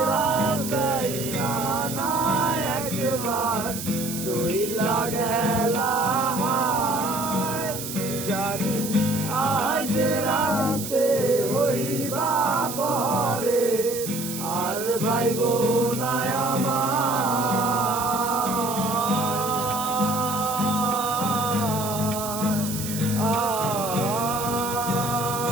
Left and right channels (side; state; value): right; noise; hiss, 7 dB below the sound